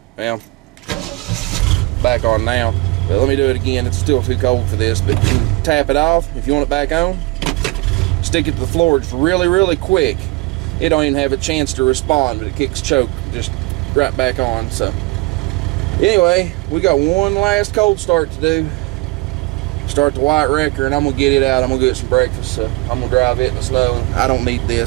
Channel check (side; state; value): left; quieter; 23.4 dB